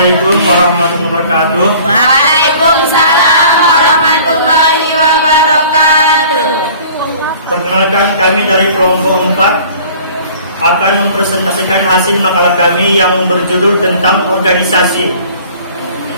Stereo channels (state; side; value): inverted; both; correlation -0.49